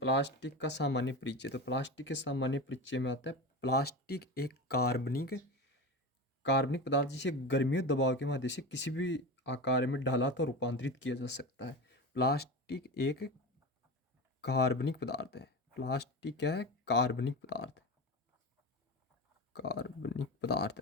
का सामान्य परिचय। तो प्लास्टिक के सामान्य परिचय में आता है प्लास्टिक एक कार्बनिक पदार्थ जिसे गर्मी और दबाव के माध्यम से किसी भी आकार में ढाला तो रूपांतरित किया जा सकता है। प्लास्टिक एक कार्बनिक पदार्थ है। प्लास्टिक क्या है? कार्बनिक पदार्थ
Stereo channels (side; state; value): both; normal; correlation 0.25